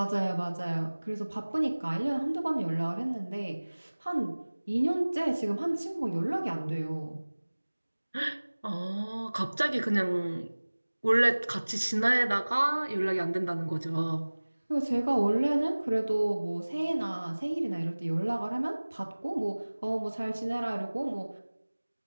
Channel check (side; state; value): both; inverted; correlation -1.00